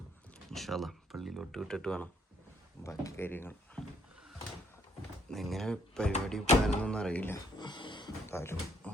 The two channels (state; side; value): normal; both; correlation 0.69